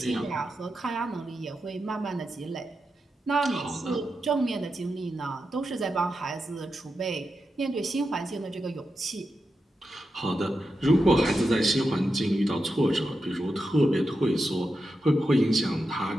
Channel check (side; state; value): both; normal; correlation 0.88